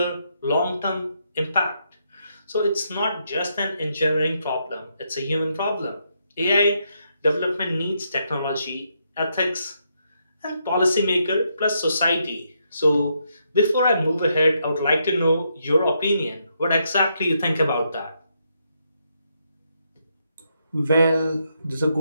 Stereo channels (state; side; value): inverted; both; correlation -0.78